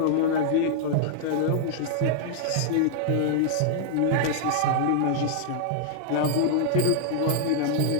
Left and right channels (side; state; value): both; different; correlation -0.01